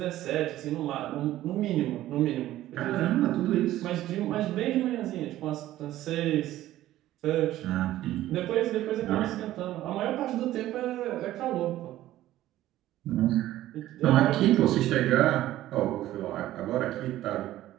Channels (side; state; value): left; quieter; 14.4 dB